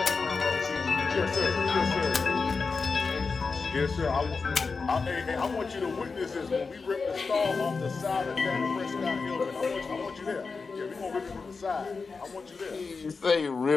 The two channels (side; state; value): right; quieter; 4.6 dB